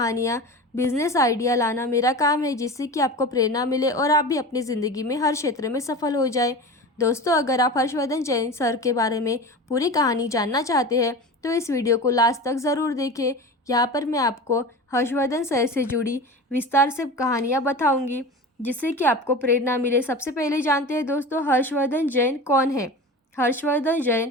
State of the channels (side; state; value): both; normal; correlation 0.32